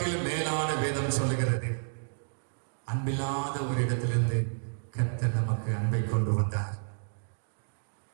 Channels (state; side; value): silent; left; digital silence